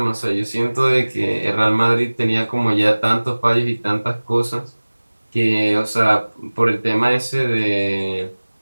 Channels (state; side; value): inverted; both; correlation -1.00